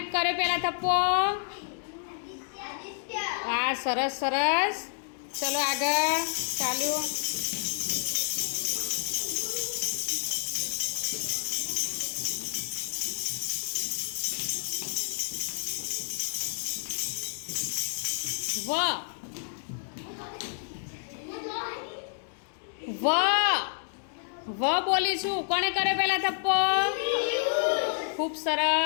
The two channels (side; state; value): right; silent; digital silence